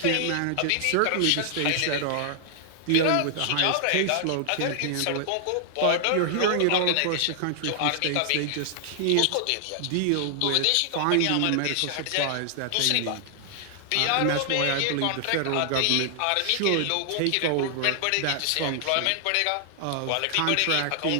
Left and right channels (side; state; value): both; different; correlation 0.00